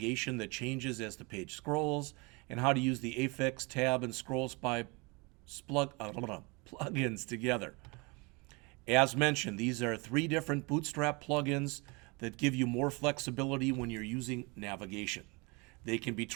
that changes as the page scrolls, and how to use the Affix Tab and Scroll Spy plugins together. As mentioned, these are 3 different Bootstrap plugins that give you more flexibility when you're using navigation. They can be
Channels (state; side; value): quieter; left; 28.2 dB